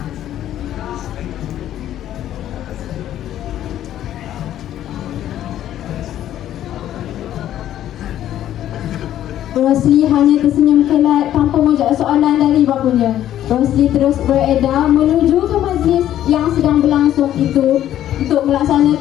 Rosli hanya tersenyum kelat tanpa menjawab soalan dari bapanya. Rosli terus beredar menuju ke majlis yang sedang berlangsung itu untuk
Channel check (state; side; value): quieter; right; 11.9 dB